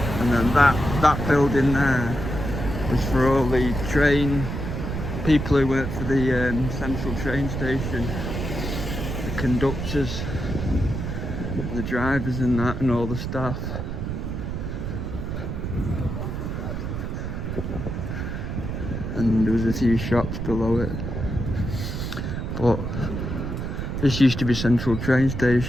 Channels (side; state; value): right; noise; rumble, 4 dB below the sound